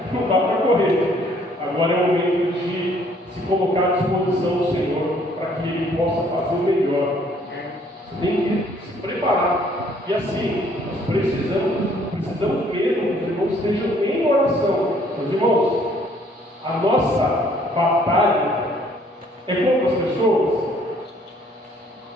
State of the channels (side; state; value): both; normal; correlation 0.62